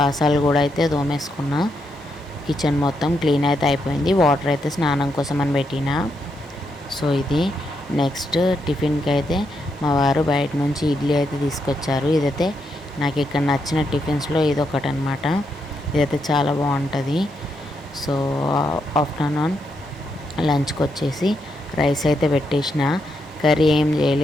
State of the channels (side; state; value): both; normal; correlation 0.81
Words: కూడా అయితే దోమేసుకున్నా. కిచెన్ మొత్తం క్లీన్ అయితే అయిపోయింది. వాటర్ అయితే స్నానం కోసం అని పెట్టిన. సో ఇది నెక్స్ట్ టిఫిన్కి అయితే మా వారు బయట నుంచి ఇడ్లీ అయితే తీసుకొచ్చారు. ఇదైతే నాకు ఇక్కడ నచ్చిన టిఫిన్స్లో ఇదొకటి అనమాట. ఇదైతే చాలా బాగుంటుంది. సో ఆఫ్టర్నూన్ లంచ్కి వచ్చేసి రైస్ అయితే పెట్టేసిన. కర్రీ ఏం